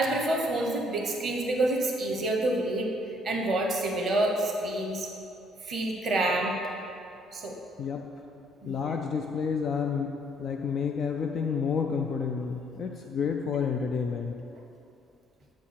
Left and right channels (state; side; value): normal; both; correlation 0.65